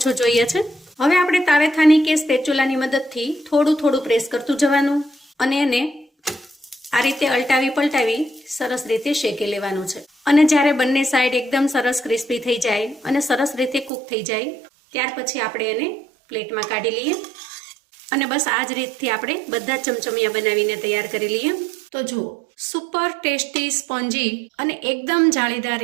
જોઈએ છે. હવે આપણે તાવેથાની કે સ્પેચ્યુલાની મદદથી થોડું થોડું પ્રેસ કરતું જવાનું અને એને આ રીતે અલટાવી પલટાવી સરસ રીતે શેકી લેવાનું છે. અને જ્યારે બંને સાઈડ એકદમ સરસ ક્રિસ્પી થઈ જાય અને સરસ રીતે કૂક થઈ જાય ત્યાર પછી આપણે એને પ્લેટમાં કાઢી લઈએ અને બસ આ જ રીતથી આપણે બધા ચમચમિયા બનાવીને તૈયાર કરી લઈએ. તો જુઓ, સુપર ટેસ્ટી, સ્પોન્જી અને એકદમ જાળીદાર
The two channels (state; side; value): drops out; left; at 13.9 s